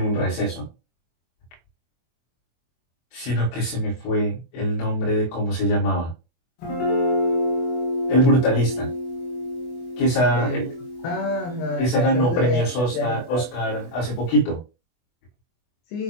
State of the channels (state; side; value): late; right; 24 ms